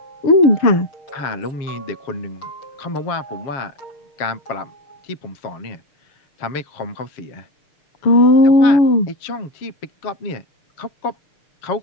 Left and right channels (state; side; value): late; right; 7.3 ms